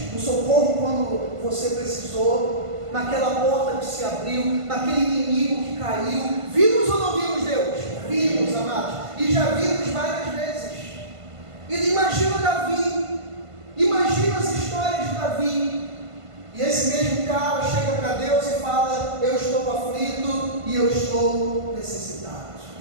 no socorro quando você precisou, naquela porta que se abriu, naquele inimigo que caiu. Vimos ou não vimos Deus? Vimos, amados, e já vimos várias vezes. E imagina Davi, imagina as histórias de Davi, e esse mesmo cara chega para Deus e fala: eu estou aflito e eu estou necessitado.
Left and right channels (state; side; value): late; left; 1.5 ms